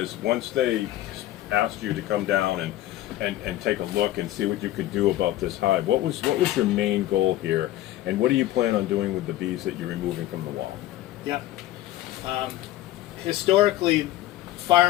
once they asked you to come down and take a look and see what you could do about this hive. What was your main goal here, and what do you plan on doing with the bees that you're removing from the wall? Yep. Historically,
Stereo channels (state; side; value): quieter; right; 14.7 dB